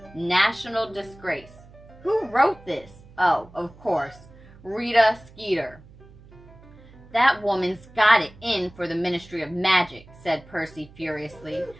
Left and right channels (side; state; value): right; noise; hum, 22 dB below the sound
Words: national disgrace. Who wrote this? Oh, of course, Rita Skeeter." "That woman's got it in for the Ministry of Magic," said Percy furiously.